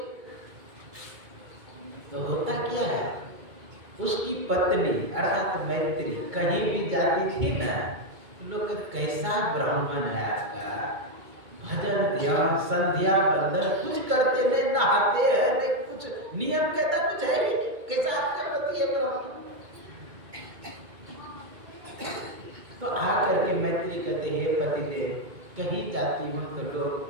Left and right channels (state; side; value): late; left; 2.3 ms